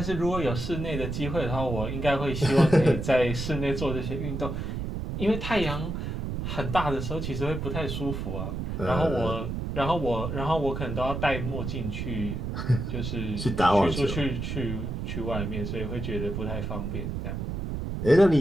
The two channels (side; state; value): right; noise; rumble, 4 dB below the sound